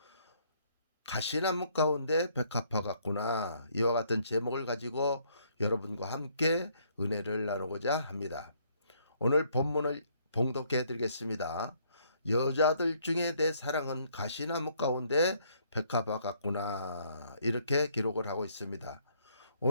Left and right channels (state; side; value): inverted; both; correlation -0.67